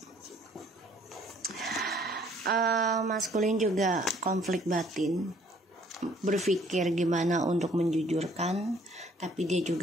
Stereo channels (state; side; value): normal; both; correlation 0.60